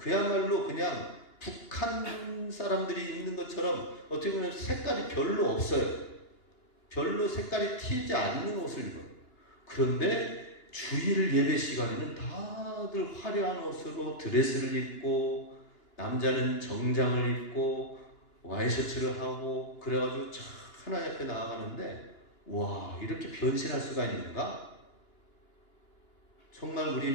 그냥 북한 사람들이 입는 것처럼 어떻게 보면 색깔이 별로 없어요. 별로 색깔이 튀지 않는 옷을 입어요. 그런데 주일 예배 시간에는 다들 화려한 옷으로 드레스를 입고 남자는 정장을 입고 와이셔츠를 하고 그래가지고 하나님 앞에 나아가는데 와, 이렇게 변신할 수가 있는가? 정말 우리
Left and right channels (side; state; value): right; late; 2.9 ms